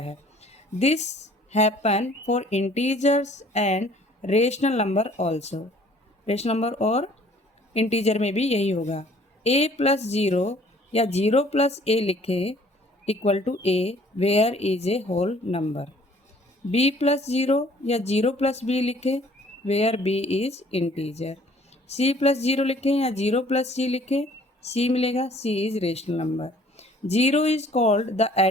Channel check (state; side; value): normal; both; correlation 0.56